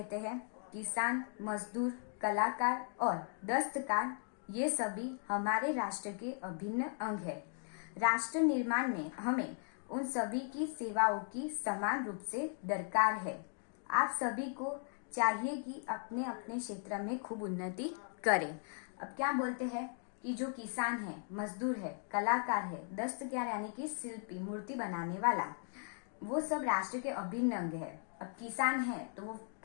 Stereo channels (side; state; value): right; silent; 53 dB below the other